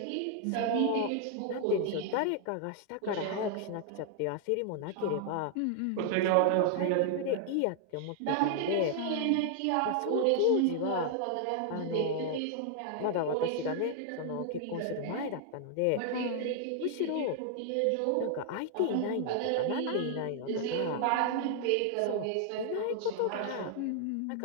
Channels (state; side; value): different; both; correlation 0.00